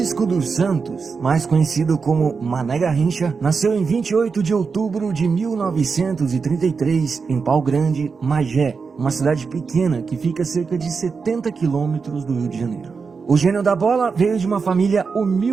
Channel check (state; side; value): quieter; left; 5.1 dB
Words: dos Santos, mais conhecido como Mané Garrincha, nasceu em 28 de outubro de 1933 em Pau Grande, Magé, uma cidade pequena que fica a cerca de 70 quilômetros do Rio de Janeiro. O gênio da bola veio de uma família